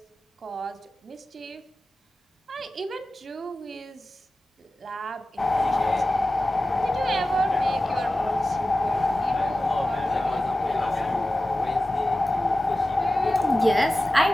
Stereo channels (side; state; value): both; normal; correlation 0.95